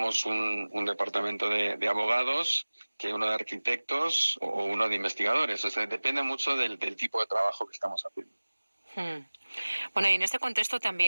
un departamento de abogados que uno de arquitectos o uno de investigadores. O sea, depende mucho del tipo de trabajo que estamos haciendo. Bueno, y en este contexto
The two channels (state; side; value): inverted; both; correlation -1.00